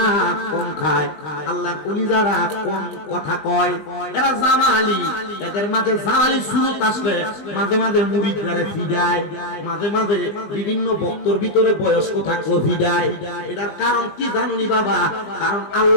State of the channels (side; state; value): right; late; 20 ms